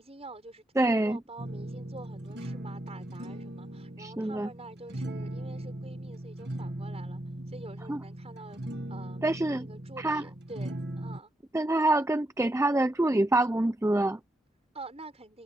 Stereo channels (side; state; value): both; normal; correlation 0.82